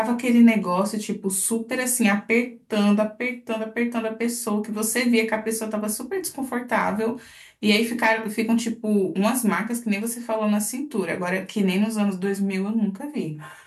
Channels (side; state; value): both; identical; correlation 1.00